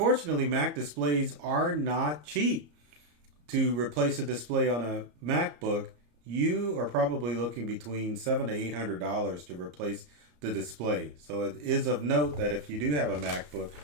Mac displays are not cheap. To replace a display on a MacBook, you are probably looking between $700 to $800 to replace the display. So it is of note that if you do have a MacBook,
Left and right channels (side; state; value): left; late; 34 ms